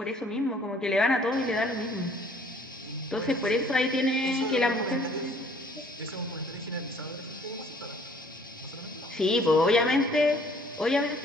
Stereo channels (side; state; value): both; normal; correlation 0.58